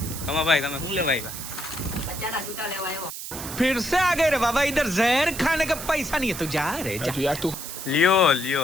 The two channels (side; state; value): right; noise; hiss, 8 dB below the sound